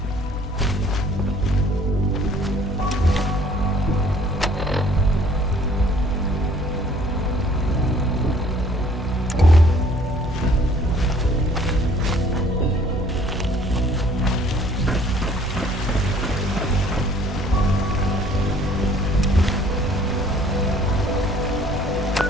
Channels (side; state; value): both; normal; correlation 0.57